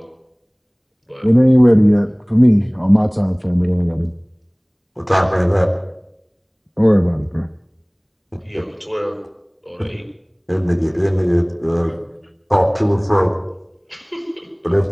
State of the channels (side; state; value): both; identical; correlation 1.00